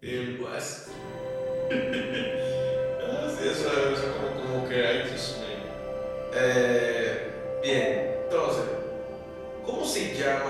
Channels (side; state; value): both; identical; correlation 1.00